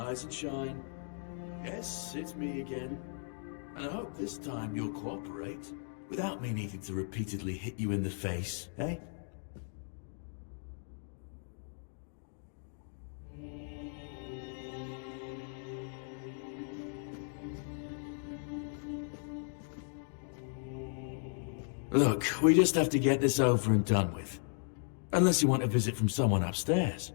and shine. Yes, it's me again. And I hope this time you'll cooperate, without me needing to repeatedly hit you in the face, eh? Look, we just have to get this over and done with. Unless you want a visit from someone upstairs.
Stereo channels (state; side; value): silent; right; 54 dB below the other